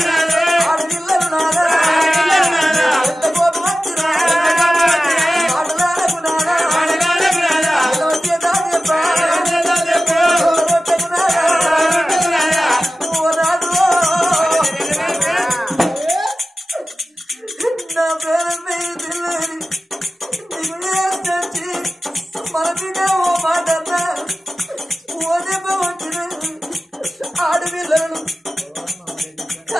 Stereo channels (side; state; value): both; normal; correlation 0.95